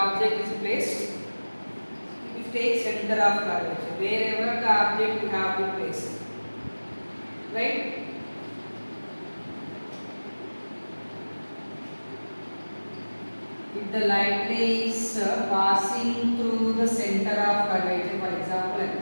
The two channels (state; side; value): inverted; both; correlation -1.00